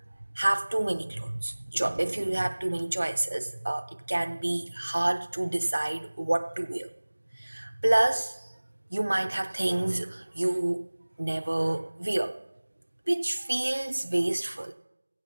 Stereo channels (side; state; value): both; inverted; correlation -1.00